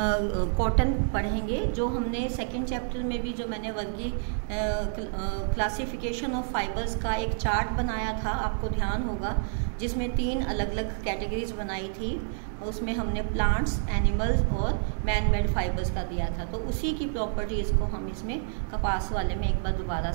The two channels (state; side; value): silent; left; 59 dB below the other